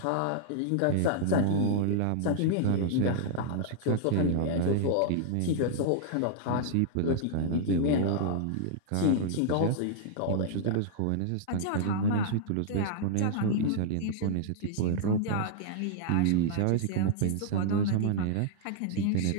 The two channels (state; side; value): different; both; correlation -0.01